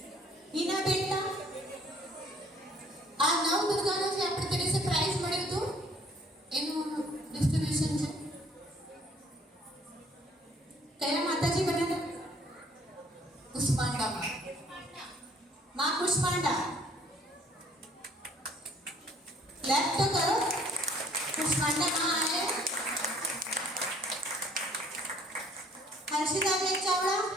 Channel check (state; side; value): normal; both; correlation 0.59